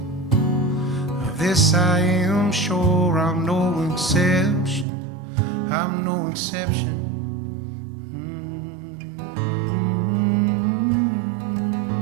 Of this I am sure, I'm no exception. I'm no exception.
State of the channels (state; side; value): drops out; left; at 4.9 s